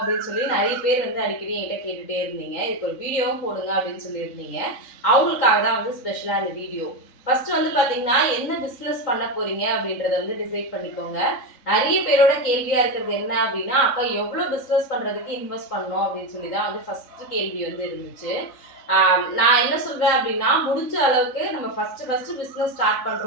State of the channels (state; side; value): late; right; 3.7 ms